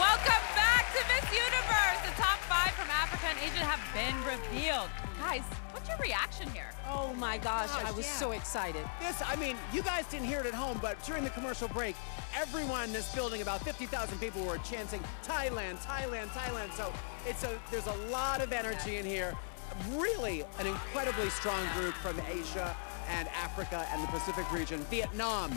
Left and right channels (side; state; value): right; silent; 53 dB below the other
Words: back to Miss Universe. The top 5 from Africa and Asia have been revealed. Guys, what's your reaction here? Oh my gosh, I was yeah. so excited. I mean, you guys didn't hear it at home, but during the commercial break, everyone in this building, about 50,000 people, were chanting Thailand, Thailand, Thailand. So there's a lot of energy in here. Really an incredibly strong group from Asia and Africa and the Pacific region.